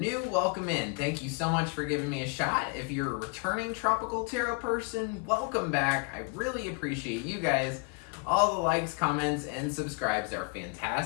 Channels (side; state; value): right; quieter; 31.6 dB